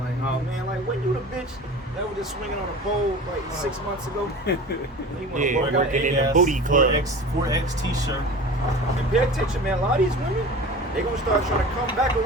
oh, man, like, when you the bitch that was just swinging on a pole, like, 6 months ago? You want to Yeah, work out working in eight the ass. booty club. 4X t-shirt. And pay attention, man. A lot of these women, they going to start trying to come back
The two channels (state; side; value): normal; both; correlation 0.37